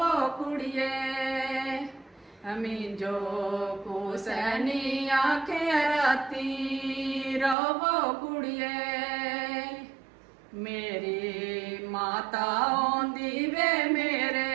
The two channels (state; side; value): drops out; left; at 7.6 s